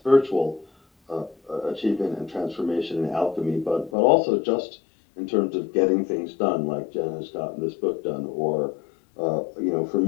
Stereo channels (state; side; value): drops out; right; at 3.9 s